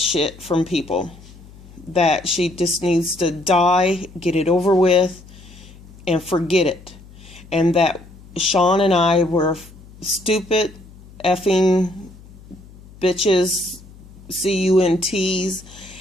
from people. That she just needs to die, get it over with, and forget it. And that Sean and I were stupid, effing bitches, CUNTs,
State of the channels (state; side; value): noise; left; hum, 21 dB below the sound